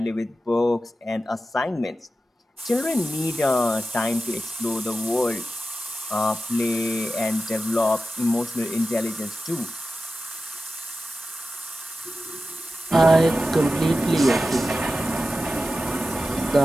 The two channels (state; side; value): normal; both; correlation 0.93